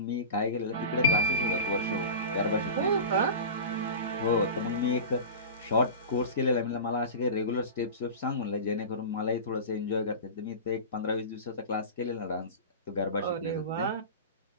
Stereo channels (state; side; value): inverted; both; correlation -0.30